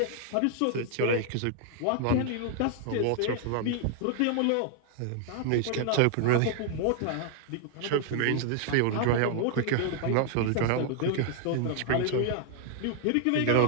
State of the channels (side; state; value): both; different; correlation -0.01